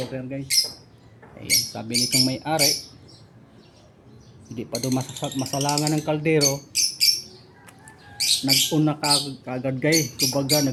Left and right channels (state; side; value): identical; both; correlation 1.00